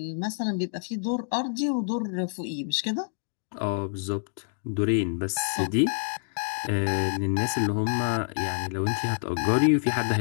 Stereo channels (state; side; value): silent; right; digital silence